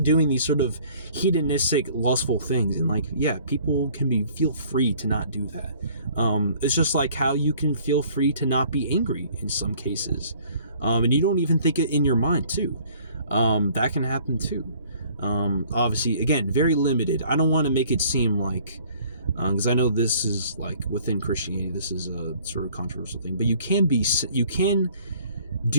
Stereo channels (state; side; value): inverted; both; correlation -0.55